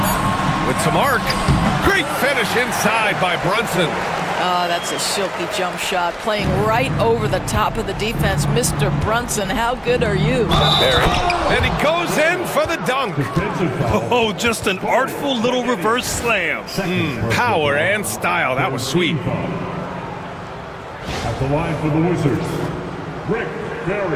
With some arc. Great finish inside by Brunson. That's a silky jump shot, playing right over the top of the defense. Mr. Brunson, how good are you? And he goes in for the dunk. Oh, just an artful little reverse slam. Power and style. That was sweet. At the line for the Wizards, Rick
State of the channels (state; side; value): identical; both; correlation 1.00